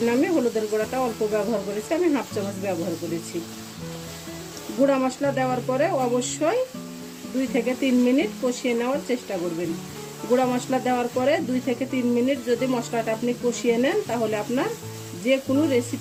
আমি হলুদের গুঁড়াটা অল্প ব্যবহার করেছি, আমি হাফ চামচ ব্যবহার করেছি। গুঁড়া মশলা দেওয়ার পরে অবশ্যই 2 থেকে 3 মিনিট কষিয়ে নেওয়ার চেষ্টা করবেন। গুঁড়া মশলা দেওয়ার পরে 2 থেকে 3 মিনিট যদি মশলাটা আপনি কষিয়ে নেন, তাহলে আপনার যে কোনো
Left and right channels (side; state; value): both; identical; correlation 1.00